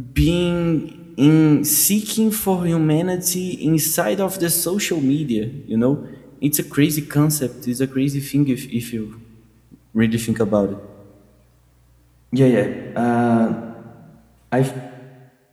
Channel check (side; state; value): both; identical; correlation 1.00